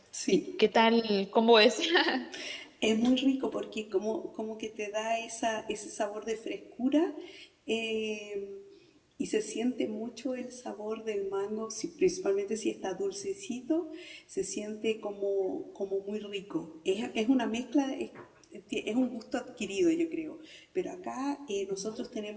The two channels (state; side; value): identical; both; correlation 1.00